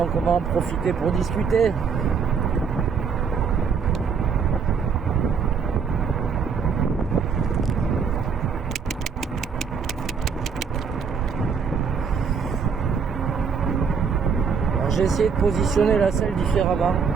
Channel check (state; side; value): quieter; left; 6.0 dB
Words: on va en profiter pour discuter. Alors, j'ai essayé de positionner la selle différemment,